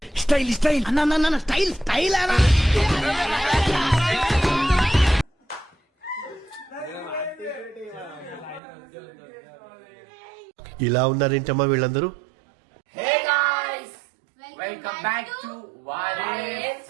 స్టైల్ స్టైల్ అన్న స్టైల్ స్టైల్ అనా ఇలా ఉన్నారేంటమ్మా వీళ్ళందరూ?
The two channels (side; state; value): left; drops out; at 8.6 s